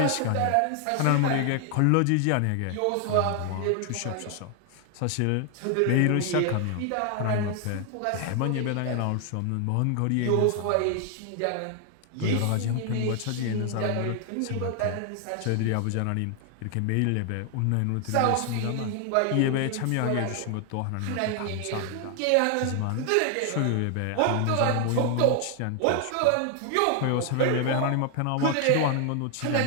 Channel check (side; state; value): both; different; correlation 0.00